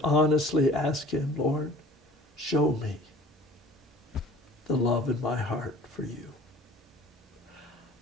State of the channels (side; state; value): both; normal; correlation 0.47